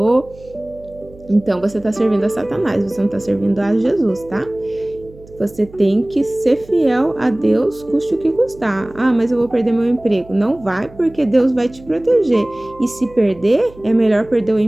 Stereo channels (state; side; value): noise; right; hum, 22 dB below the sound